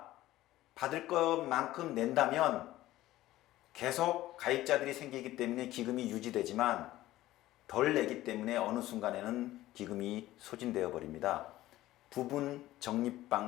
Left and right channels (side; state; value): right; quieter; 15.7 dB